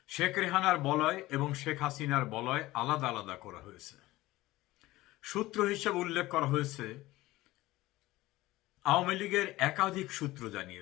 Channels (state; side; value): quieter; right; 18.0 dB